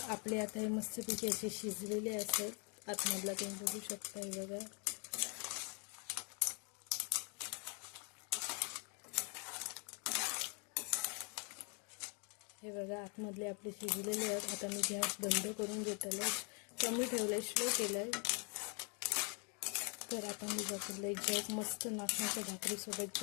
आपले आता हे मस्तपैकी असे शिजलेले असतात. आतमधला तुम्ही बघू शकता. हे बघा, हे बघा आतमधले आपले शिजलेले आहेत. आता मी गॅस बंद करून घेतलं, कमी ठेवलंय, स्लो केलंय. तर आता मी बघितलं एक जग मस्त नाचण्याच्या भाकरीसोबत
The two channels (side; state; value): right; quieter; 35.5 dB